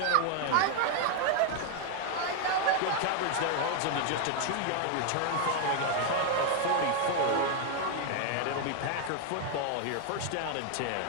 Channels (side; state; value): both; different; correlation 0.00